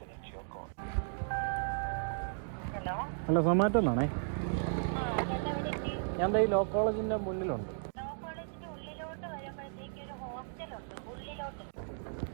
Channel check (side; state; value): left; silent; digital silence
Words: ഹലോ, സൊമാറ്റോ എന്നാണേ. ഞാൻ ഈ ലോ കോളേജിന്റെ മുന്നിലുണ്ട്.